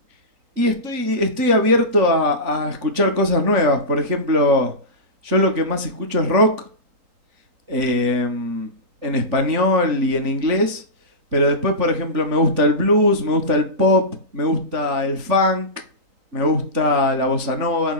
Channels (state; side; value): late; left; 3.5 ms